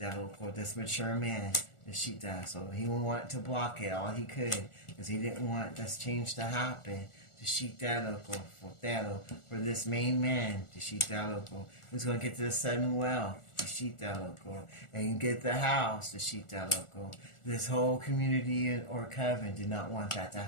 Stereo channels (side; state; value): right; late; 1.4 ms